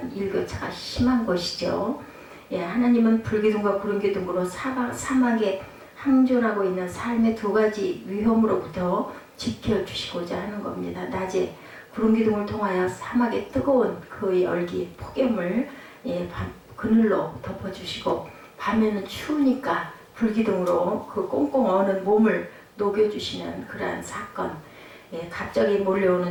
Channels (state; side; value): identical; both; correlation 1.00